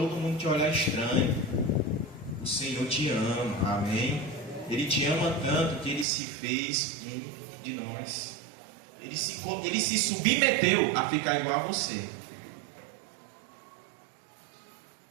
mundo te olhar estranho. O Senhor te ama, amém? Ele te ama tanto que Ele se fez um de nós. Ele se submeteu a ficar igual a você.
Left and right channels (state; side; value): drops out; left; at 6.1 s